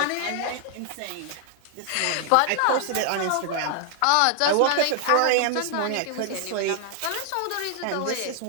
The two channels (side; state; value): both; different; correlation 0.00